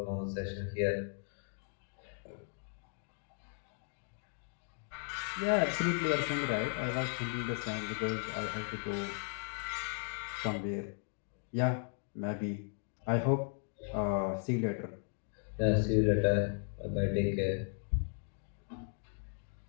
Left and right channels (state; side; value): silent; right; 53 dB below the other